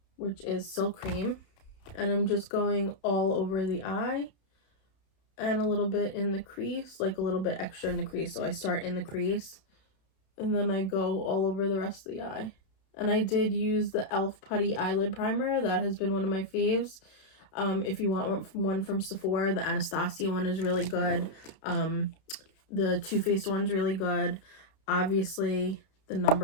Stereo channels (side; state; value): right; late; 31 ms